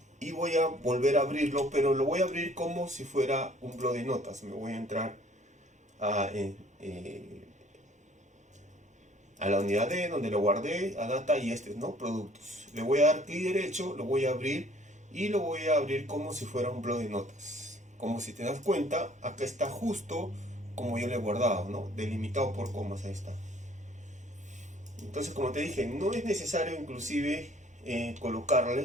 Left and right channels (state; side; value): normal; both; correlation 0.57